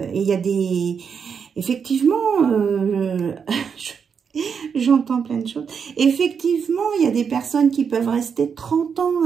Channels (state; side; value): quieter; left; 6.6 dB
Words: il y a des... Effectivement, j'entends plein de choses. Effectivement, il y a des personnes qui peuvent rester 30 ans